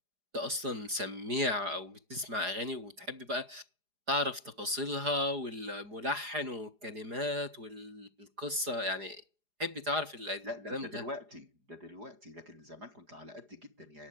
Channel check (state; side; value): late; left; 4.9 ms